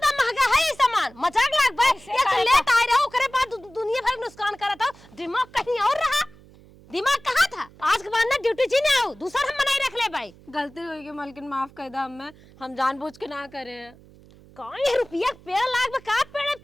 महंगा है ये सामान मजाक लागबा। ये तो लेट आए रहो करे बाद दुनिया भर नुकसान करत हो। दिमाग कहीं और रहा। दिमाग कहाँ था? आज के बाद ना ड्यूटी जी ना आओ दूसरा हम बनाई रख ले भाई। गलती हो गई मलकिन माफ कर दा। हम जानबूझ के ना करे हैं। कौन रुपया पेड़ लाग में का पेड़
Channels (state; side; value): noise; right; hum, 24 dB below the sound